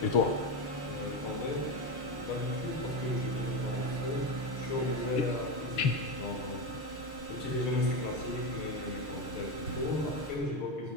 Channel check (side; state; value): right; late; 6.6 ms